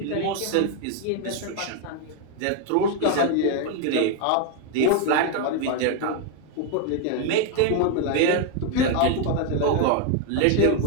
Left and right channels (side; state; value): both; different; correlation 0.01